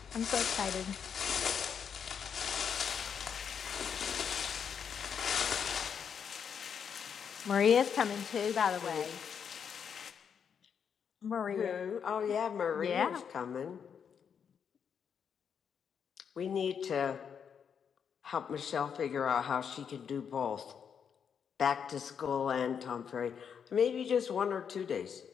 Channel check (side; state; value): right; quieter; 7.3 dB